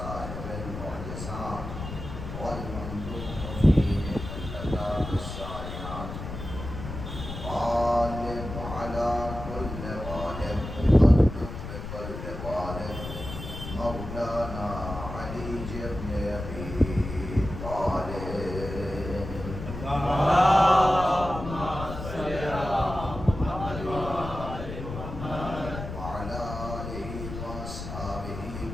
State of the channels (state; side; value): noise; left; rumble, 8 dB below the sound